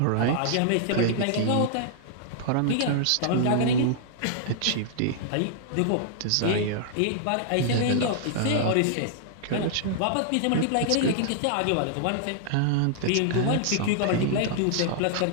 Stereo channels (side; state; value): both; different; correlation -0.01